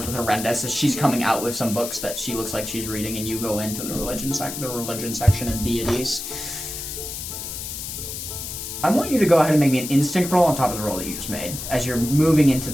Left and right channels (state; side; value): noise; left; hiss, 7 dB below the sound